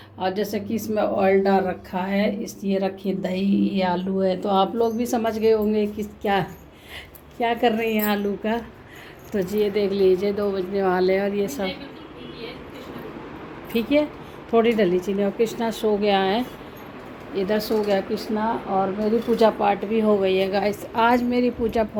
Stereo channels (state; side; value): identical; both; correlation 1.00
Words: और जैसे कि इसमें ऑयल डाल रखा है, इस ये रखी दही, ये आलू है। तो आप लोग भी समझ गए होंगे कि क्या क्या कर रही हैं आलू का। तो जी ये देख लीजिए 2 बजने वाले हैं और ये सब ठीक है। थोड़ी डली चीनी। और कृष्णा सो गया है, इधर सो गया कृष्णा। और मेरी पूजा पाठ भी हो गई है गाइस। आज मेरी पूजा